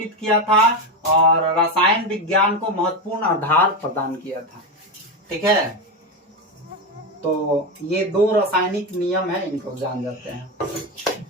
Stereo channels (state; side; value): normal; both; correlation 0.14